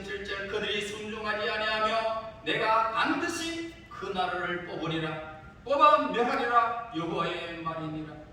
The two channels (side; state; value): both; identical; correlation 1.00